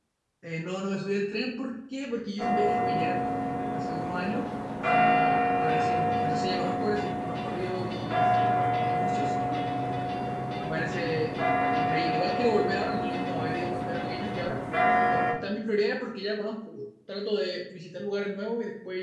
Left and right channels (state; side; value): identical; both; correlation 1.00